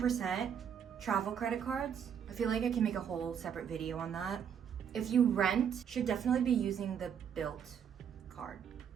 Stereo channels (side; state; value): left; quieter; 8.1 dB